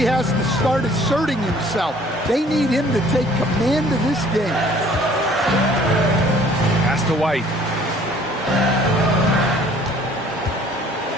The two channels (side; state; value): both; normal; correlation 0.55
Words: has to start asserting himself. They need him to take command of this game. Pass to White.